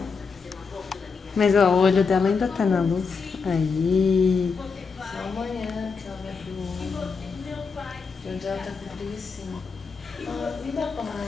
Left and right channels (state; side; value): quieter; right; 5.1 dB